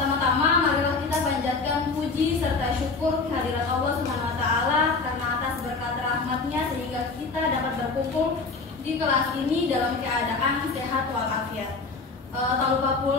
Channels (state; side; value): quieter; right; 4.1 dB